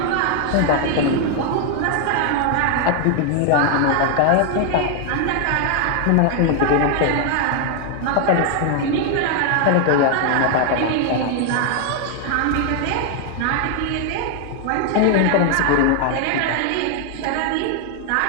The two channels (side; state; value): both; different; correlation 0.00